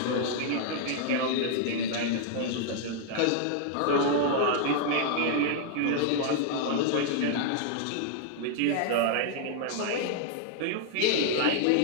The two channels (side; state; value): both; different; correlation 0.00